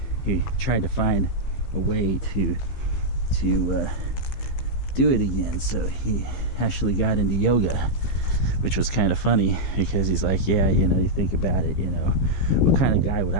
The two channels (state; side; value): late; right; 15 ms